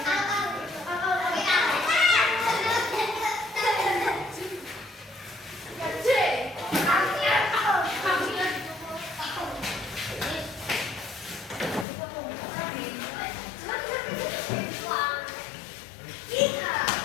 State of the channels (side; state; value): right; drops out; at 11.9 s